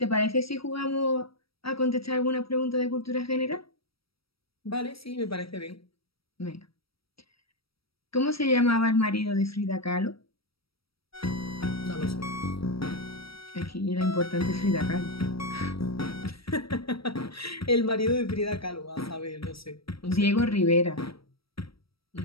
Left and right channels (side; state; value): right; late; 0.76 ms